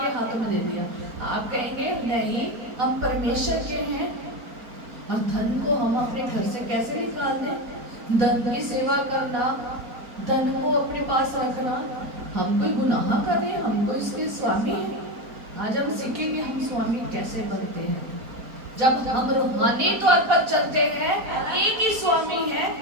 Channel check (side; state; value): left; late; 4.4 ms